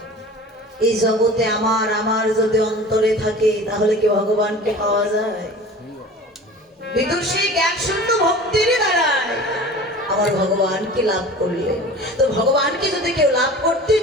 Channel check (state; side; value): normal; both; correlation 0.40